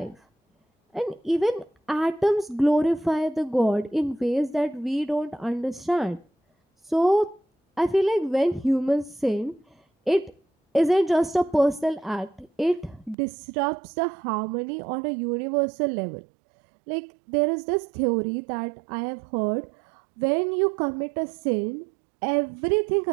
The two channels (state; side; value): drops out; left; at 13.2 s